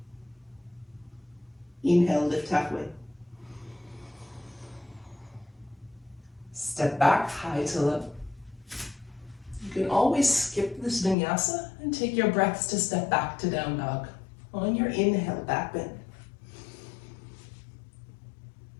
Inhale, lift halfway. Step back, high to low. You can always skip this vinyasa and take your breaths to step back to down dog. On your inhale, back bend.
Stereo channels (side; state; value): right; drops out; at 11.2 s